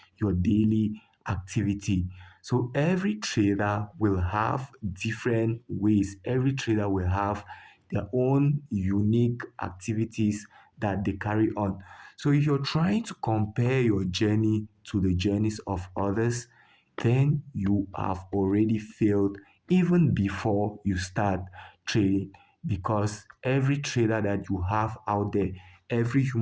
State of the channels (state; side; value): identical; both; correlation 1.00